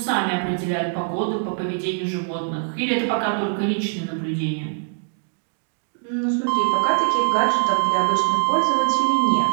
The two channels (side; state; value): left; silent; digital silence